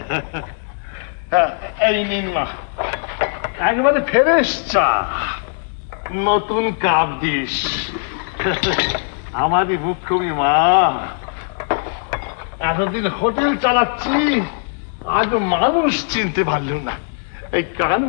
এই নিন মা, একেবারে ফ্রেশ চা, নতুন কাপ দিস। আমারই মুখ্যমী মা, এতদিন হোটেল চালাচ্ছি, আজ মানুষ চিনতে পারল না। এই কান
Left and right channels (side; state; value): right; silent; digital silence